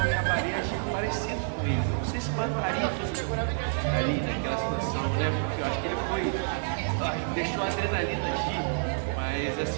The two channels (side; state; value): left; silent; 59 dB below the other